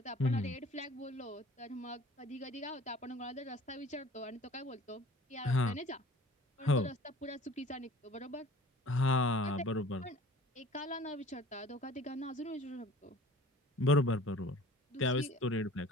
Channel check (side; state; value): both; normal; correlation 0.47